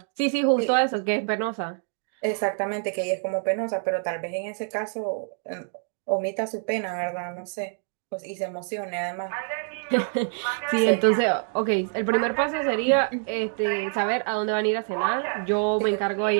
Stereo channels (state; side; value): silent; left; 61 dB below the other